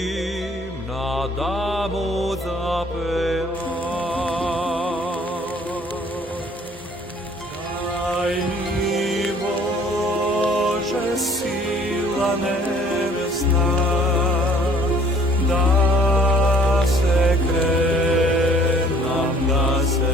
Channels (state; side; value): normal; both; correlation 0.56